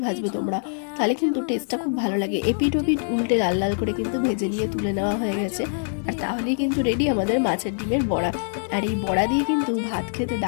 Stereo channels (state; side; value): silent; right; digital silence